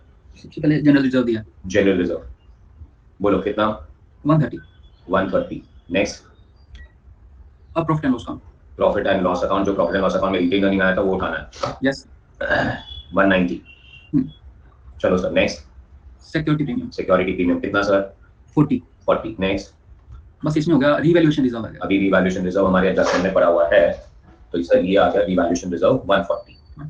सबसे पहले जनरल रिजर्व दिया जनरल रिजर्व. बोलो कितना? 130. 130. नेक्स्ट अब profit and loss account. Profit and loss account. जो प्रॉफिट एंड लॉस अकाउंट में रिटेन अर्निंग आया था वो उठाना है. यस. 190. चलो sir next security premium security premium कितना सर? 40. 40. नेक्स्ट बस इसमें हो गया रीवैल्यूएशन रिजर्व आ गया. अभी रिवैल्यूएशन रिजर्व हमारे एडजस्टमेंट में पड़ा हुआ है तो सर ये आ गया रिवैल्यूएशन रिजर्व 140.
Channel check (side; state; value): both; identical; correlation 1.00